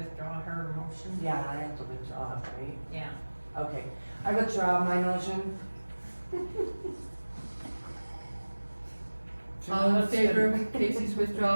her motion? Yeah, I have to withdraw it, right? Yeah. Okay, I withdraw my motion. All in favor of Casey's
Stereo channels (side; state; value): both; inverted; correlation -1.00